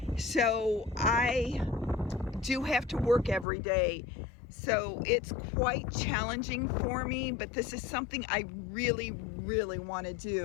So I do have to work every day. So it's quite challenging for me, but this is something I really want to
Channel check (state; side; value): drops out; right; at 3.5 s